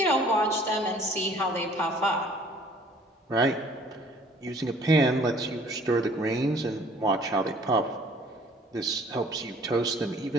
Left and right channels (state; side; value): normal; both; correlation 0.55